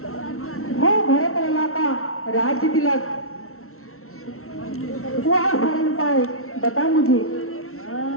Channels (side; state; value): right; late; 0.63 ms